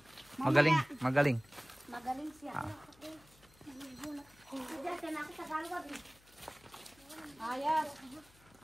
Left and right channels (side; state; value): left; noise; hum, 27 dB below the sound